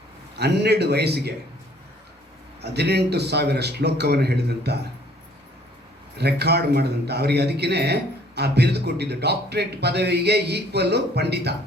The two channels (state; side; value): normal; both; correlation 0.59